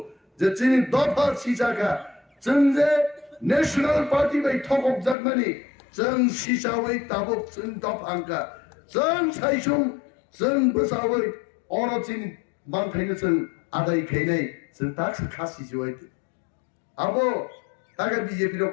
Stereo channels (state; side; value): drops out; right; at 5.2 s